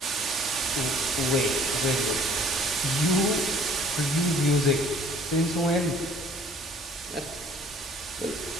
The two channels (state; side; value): normal; both; correlation 0.55